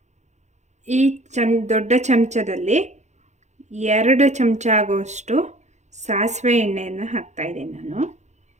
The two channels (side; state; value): left; late; 0.33 ms